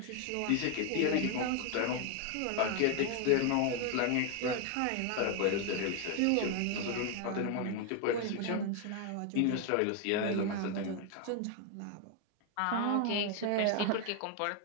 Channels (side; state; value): both; different; correlation 0.01